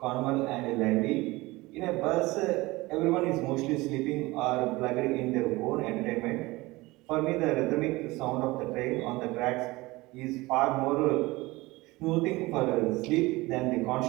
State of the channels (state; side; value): quieter; left; 21.1 dB